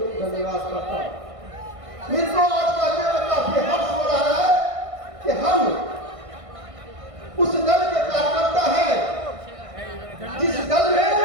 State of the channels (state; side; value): late; left; 1.6 ms